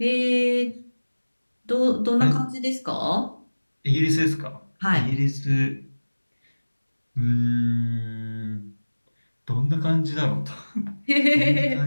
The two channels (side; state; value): both; inverted; correlation -1.00